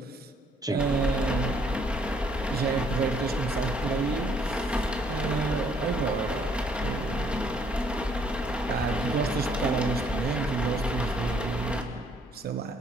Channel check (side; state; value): both; normal; correlation 0.66